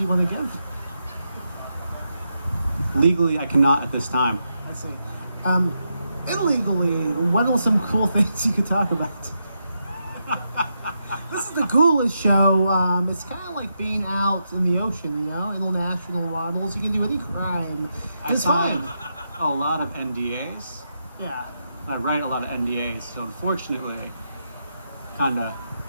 you want to give? Legally, I cannot at this time. I see. Illegally, what are some cool things you could talk about? This is the Ghoulish Show. It's kind of like being out in the ocean, you know, international models. You can do any crime. It's fine. A lot of NDAs. Yeah. I write a lot of NDAs, so unfortunately, kind of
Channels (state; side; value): inverted; both; correlation -0.84